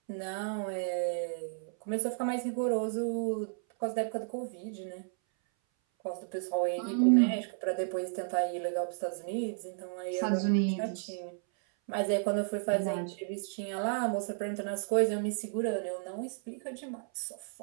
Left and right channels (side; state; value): left; silent; 56 dB below the other